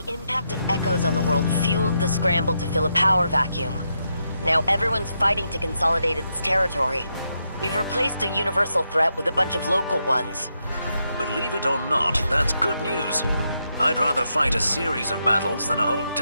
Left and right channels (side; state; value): both; inverted; correlation -0.82